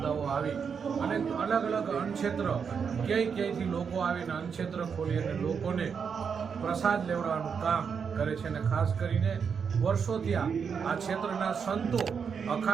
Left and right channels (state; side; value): quieter; left; 6.4 dB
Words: આવી અને અલગ અલગ અન્નક્ષેત્ર ક્યાંયથી લોકો આવીને અન્નક્ષેત્ર ખોલી અને લોકોને પ્રસાદ લેવડાવવાનું કામ કરે છે. અને ખાસ કરીને વર્ષોથી આ ક્ષેત્રના સંતો,